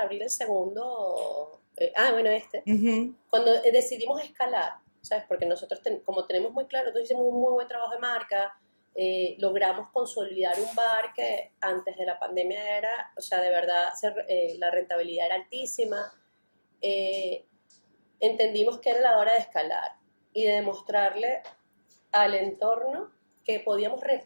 abrir el segundo, cuando decidimos escalar, ¿sabes? Porque nosotros, como tenemos muy claro, nosotros hicimos un muy buen trabajo de marca, logramos consolidar un bar que antes de la pandemia era, de verdad, la rentabilidad era altísima. Entendimos que era la hora de escalar y de demostrarle al entorno que podíamos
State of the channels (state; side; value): inverted; both; correlation -1.00